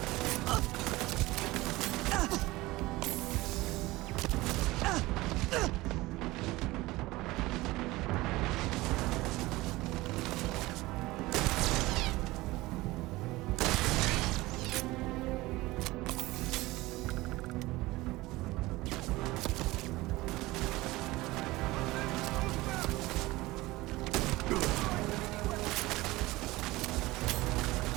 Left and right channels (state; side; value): quieter; left; 19.7 dB